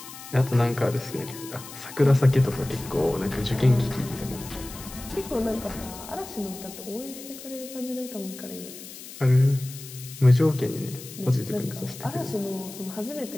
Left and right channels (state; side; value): noise; left; hiss, 14 dB below the sound